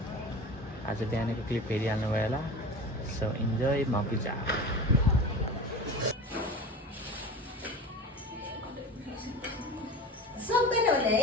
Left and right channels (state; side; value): normal; both; correlation 0.32